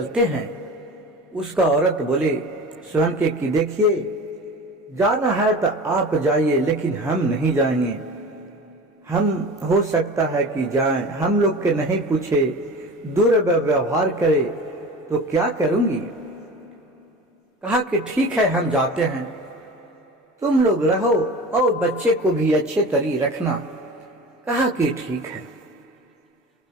हैं। उसका औरत बोले सोहन के कि देखिए, जाना है तो आप जाइए, लेकिन हम नहीं जाएंगे। हम हो सकता है कि जाएं, हम लोग के नहीं पूछे, दुर्व्यवहार करे तो क्या करूंगी। कहा कि ठीक है, हम जाते हैं, तुम लोग रहो और बच्चे को भी अच्छे तरी रखना। कहा कि ठीक है।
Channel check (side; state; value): both; normal; correlation 0.35